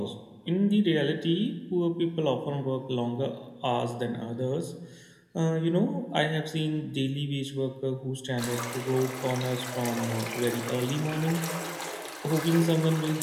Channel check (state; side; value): identical; both; correlation 1.00